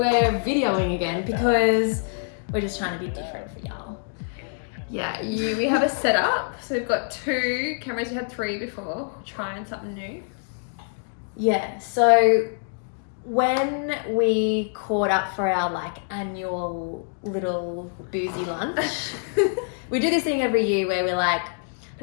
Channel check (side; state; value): right; silent; digital silence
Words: videoing again because we're just trying to be different for y'all. Yeah, we have a setup. So we've got 2 cameras. We had 3 before. Trying something new. Yeah, so when we caught up for our annual little boozy lunch, we do this thing every year where we're like,